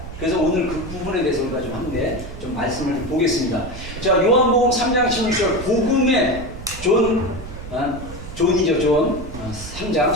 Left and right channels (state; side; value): noise; right; rumble, 12 dB below the sound